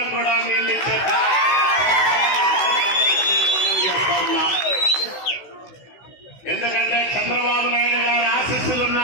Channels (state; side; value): late; right; 16 ms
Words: కూడా నీళ్ళు ఇచ్చే ఎందుకంటే చంద్రబాబు నాయుడు గారి